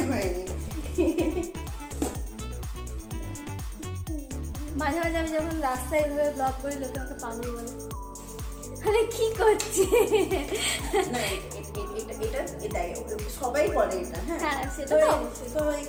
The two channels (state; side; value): identical; both; correlation 1.00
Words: হয়নি। মাঝে আমি যখন রাস্তায় এভাবে ব্লগ করি লোকে আমাকে পাগল বলে, আরে কি করছে। না এটা সবাই বলে এটা। হ্যাঁ সেটা তো তো অবশ্যই। তো